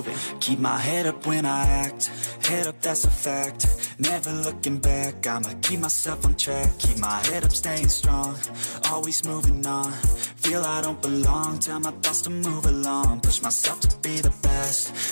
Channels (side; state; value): both; inverted; correlation -1.00